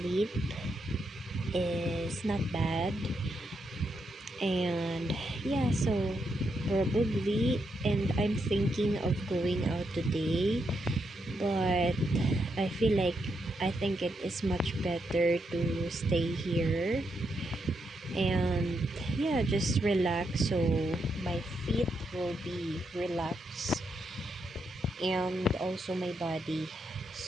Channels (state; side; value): normal; both; correlation 0.81